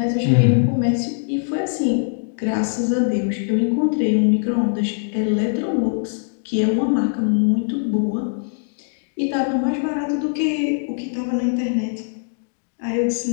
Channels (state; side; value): silent; right; digital silence